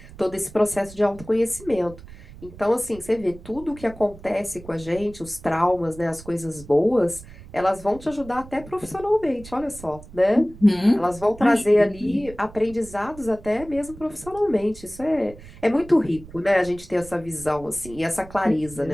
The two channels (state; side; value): noise; right; rumble, 18 dB below the sound